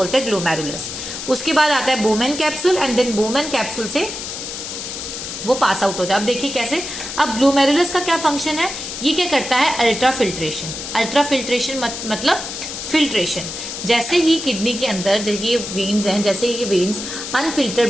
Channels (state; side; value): noise; left; hiss, 7 dB below the sound